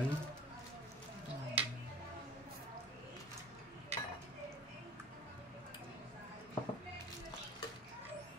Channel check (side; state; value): both; normal; correlation 0.42